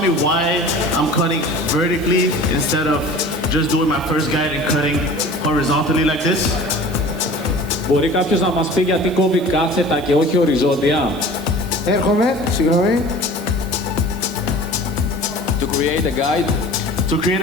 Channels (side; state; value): right; noise; hiss, 22 dB below the sound